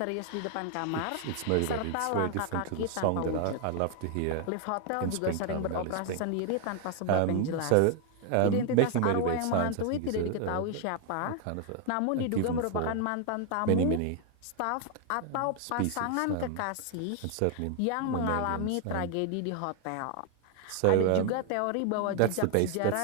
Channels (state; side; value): different; both; correlation 0.00